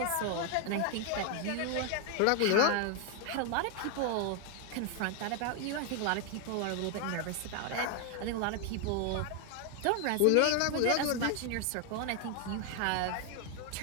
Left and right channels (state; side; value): different; both; correlation 0.01